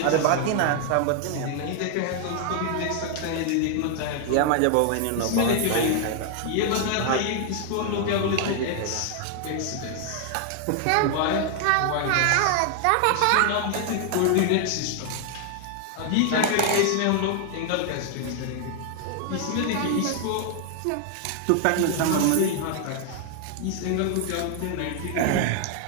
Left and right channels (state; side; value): different; both; correlation 0.00